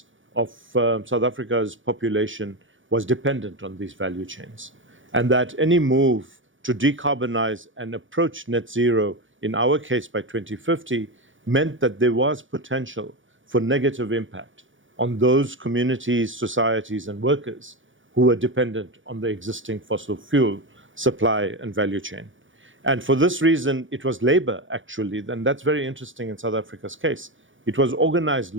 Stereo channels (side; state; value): left; late; 0.56 ms